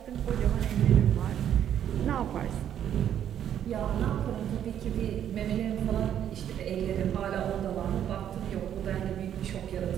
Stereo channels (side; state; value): left; quieter; 10.0 dB